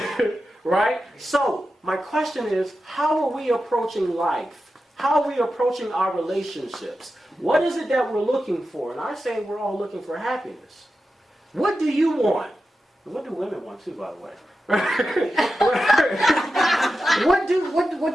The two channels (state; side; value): normal; both; correlation 0.91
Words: Right? So, my question is, how are we approaching life? How are we approaching our relationships? What is it that we're looking for? And I say we're all looking for happiness. What do you want? And what do women want too, by the way? What